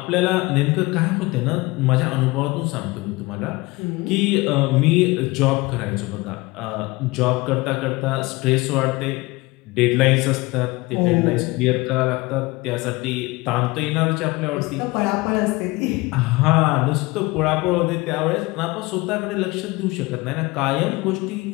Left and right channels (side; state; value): right; quieter; 22.6 dB